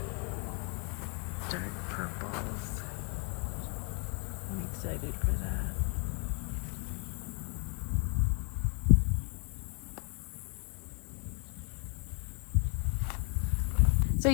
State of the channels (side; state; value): right; quieter; 36.0 dB